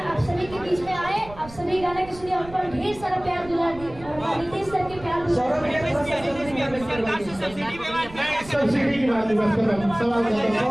आप सभी के बीच में आए, आप सभी गाना के सुनिए, हम पर ढेर सारा प्यार दुलार दी और रितेश सर के प्यार सब्सिडी की बात बस करो, सवाल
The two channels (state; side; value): noise; right; rumble, 17 dB below the sound